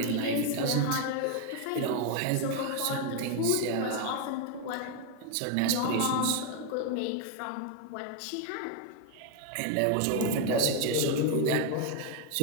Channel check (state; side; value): different; both; correlation 0.01